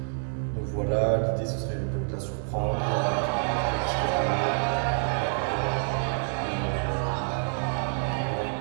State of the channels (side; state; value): left; silent; digital silence